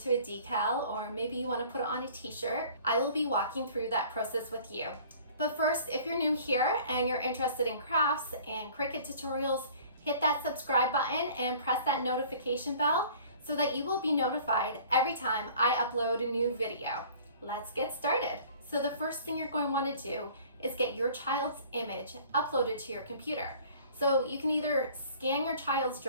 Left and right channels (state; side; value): inverted; both; correlation -0.50